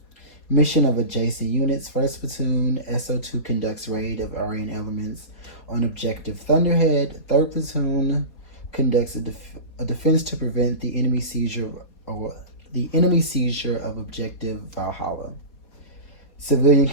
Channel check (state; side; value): late; right; 4.2 ms